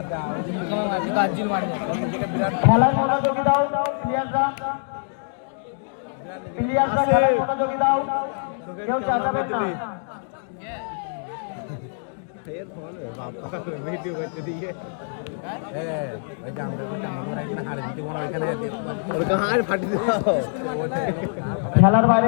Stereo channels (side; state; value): right; silent; digital silence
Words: গাজ্জিল মারবো খেলার মনোযোগী দাও প্লেয়াররা খেলার মনোযোগী দাও কেউ চালাবে না ফের ফোন বাবা ভিডিও করতে দিয়ে খেলার বাইরে